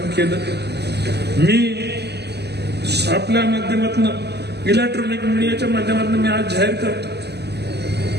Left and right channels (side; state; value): left; late; 0.49 ms